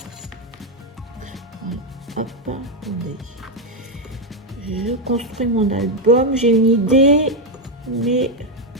hop, attendez, je construis mon album. J'ai une idée, mais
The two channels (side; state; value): both; normal; correlation 0.04